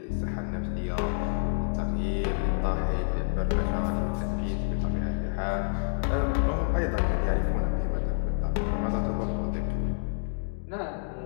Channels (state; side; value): silent; right; digital silence